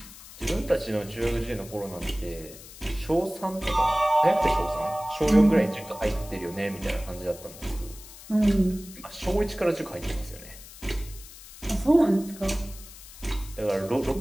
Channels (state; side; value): noise; left; hiss, 17 dB below the sound